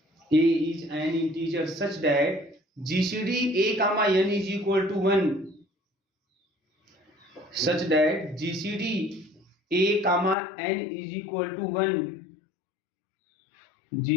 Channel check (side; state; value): right; drops out; at 10.4 s